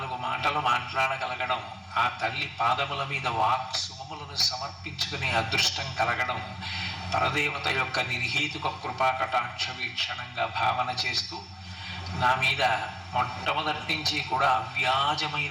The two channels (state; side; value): identical; both; correlation 1.00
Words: మాటలు మాట్లాడగలగడం, ఆ తల్లి పాదముల మీద వాక్సుమములను సమర్పించుకునే అదృష్టం కలగడం పరదేవత యొక్క నిర్హేతుక కృపా కటాక్ష వీక్షణంగా భావన చేస్తూ, నా మీద మొట్టమొదటి నుంచి కూడా